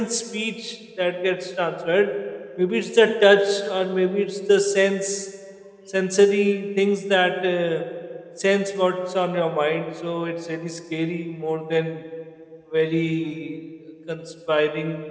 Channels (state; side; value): identical; both; correlation 1.00